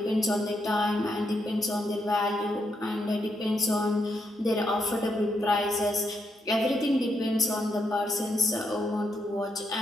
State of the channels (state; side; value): normal; both; correlation 0.80